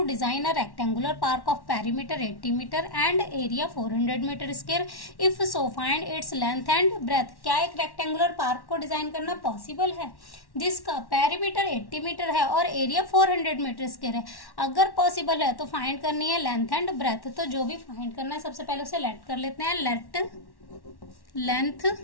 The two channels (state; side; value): late; right; 1.1 ms